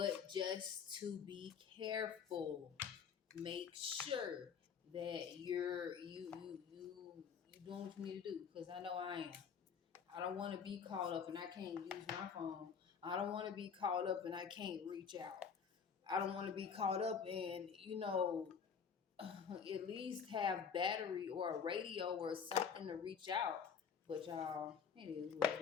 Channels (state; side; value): quieter; right; 6.8 dB